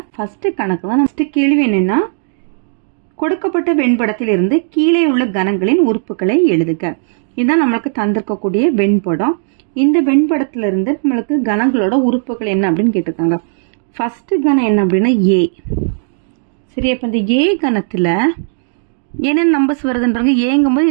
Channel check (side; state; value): left; silent; digital silence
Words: ஃபர்ஸ்ட் கணக்கு தான். ஃபர்ஸ்ட் கேள்வி என்னன்னா, கொடுக்கப்பட்ட வெண்படத்திலிருந்து கீழே உள்ள கணங்களின் உறுப்புகளை எழுதுக. இதுதான் நம்மளுக்கு தந்திருக்கக்கூடிய வெண்படம். இந்த வெண்படத்திலிருந்து நம்மளுக்கு கணங்களோட உறுப்புகள் என்ன அப்படின்னு கேட்டிருக்காங்க. ஃபர்ஸ்ட் கணம் என்ன அப்படின்னா ஏ. சரி, அப்போ இந்த ஏ கணத்துல என்னென்ன நம்பர்ஸ் வருதுன்றாங்க.